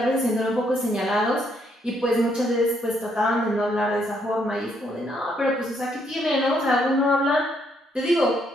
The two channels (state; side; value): normal; both; correlation 0.72